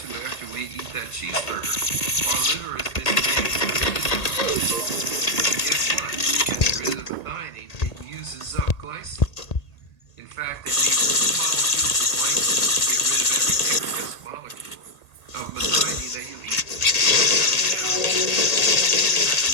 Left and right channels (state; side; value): late; right; 1.8 ms